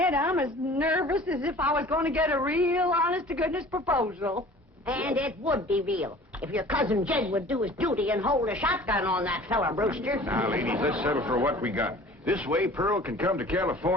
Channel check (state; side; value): normal; both; correlation 0.46